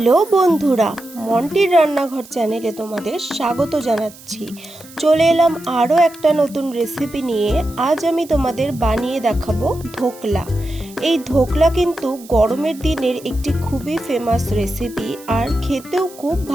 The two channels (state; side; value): noise; right; hiss, 21 dB below the sound